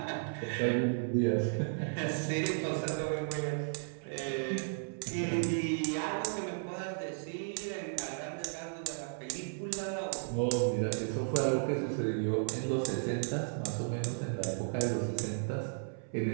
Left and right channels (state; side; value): silent; left; 55 dB below the other